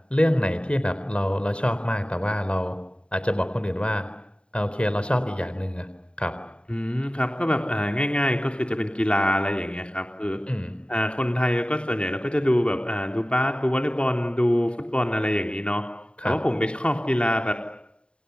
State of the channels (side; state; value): right; late; 0.054 ms